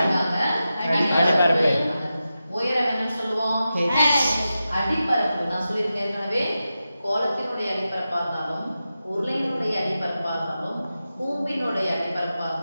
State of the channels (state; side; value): inverted; both; correlation -0.91